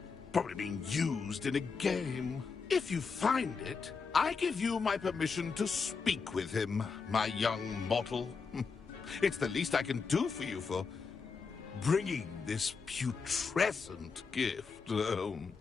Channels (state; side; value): quieter; right; 5.1 dB